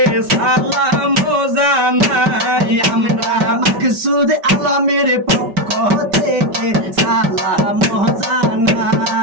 সালাম জানাই আমরা মাকসুদ আলমের পক্ষ থেকে সালাম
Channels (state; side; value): late; left; 5.2 ms